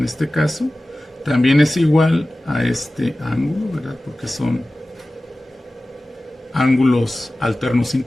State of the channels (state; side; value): normal; both; correlation 0.96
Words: este caso, también es igual a este ángulo, ¿verdad? Porque son ángulos alternos